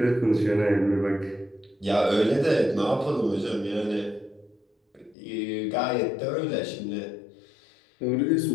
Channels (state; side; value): drops out; right; at 5.2 s